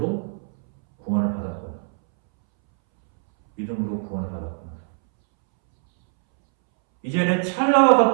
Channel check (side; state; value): left; silent; 64 dB below the other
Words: 구원을 받았구나. 믿음으로 구원을 받았구나. 이제는 찰나와